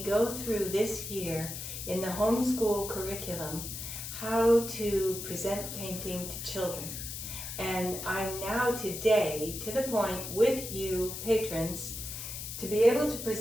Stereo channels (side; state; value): left; noise; hiss, 7 dB below the sound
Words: go through this year in the homeschool curriculum how to present painting to children. And I'm now today to the point with you patrons to be able to